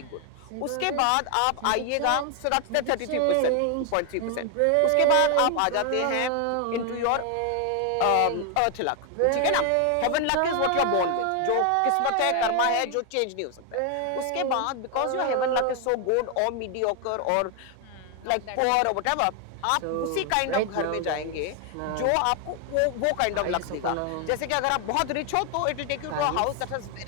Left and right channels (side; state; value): both; different; correlation 0.01